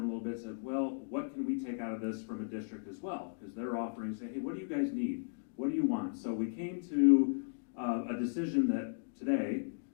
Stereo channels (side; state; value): right; silent; digital silence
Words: a little bit, said, well, what can we take out of this from a district as well? Because they're offering, say, hey, what do you guys need? What do you want? So we came to a decision that today,